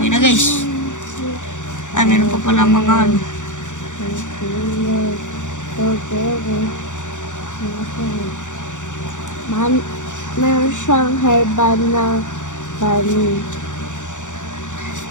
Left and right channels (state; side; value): late; right; 0.86 ms